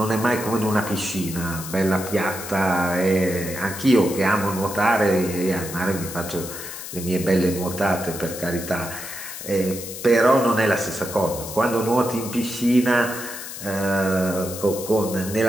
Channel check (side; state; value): left; noise; hiss, 10 dB below the sound